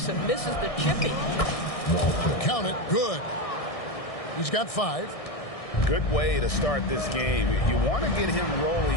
and misses the chippy. Count it. Good. He's got 5. Good way to start this game. You want to get him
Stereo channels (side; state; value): right; late; 1.6 ms